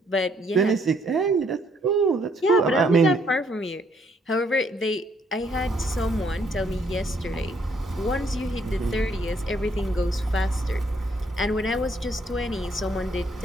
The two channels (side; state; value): both; normal; correlation 0.68